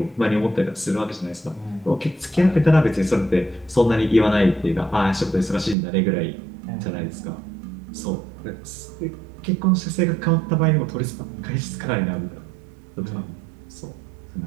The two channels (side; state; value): left; drops out; at 5.8 s